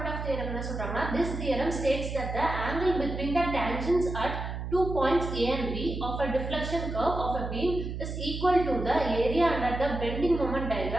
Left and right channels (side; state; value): right; noise; hum, 5 dB below the sound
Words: of theorem என்ன சொல்றாங்கன்னா, this theorem states that the angle between the tangents at 2 points A and B of a deflection curve of a beam is equal to the area under the bending moment